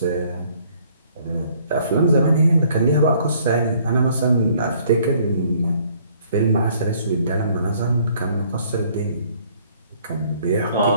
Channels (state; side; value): inverted; both; correlation -0.61